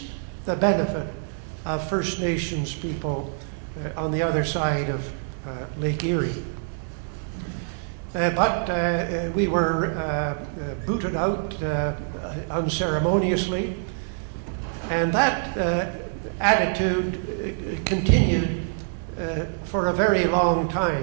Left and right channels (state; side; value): silent; left; digital silence